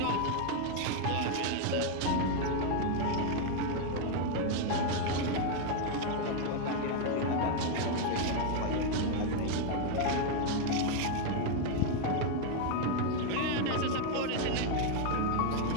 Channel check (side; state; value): both; different; correlation 0.01